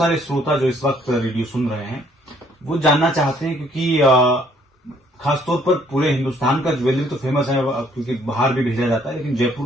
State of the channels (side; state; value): both; normal; correlation 0.64